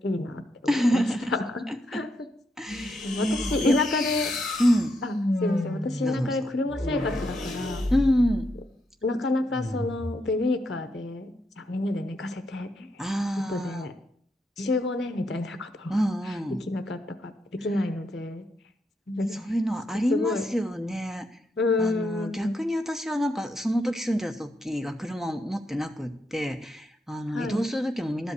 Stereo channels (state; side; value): normal; both; correlation 0.80